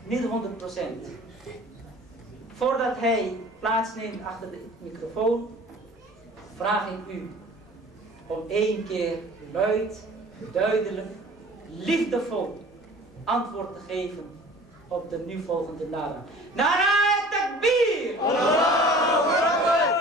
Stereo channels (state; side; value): normal; both; correlation 0.46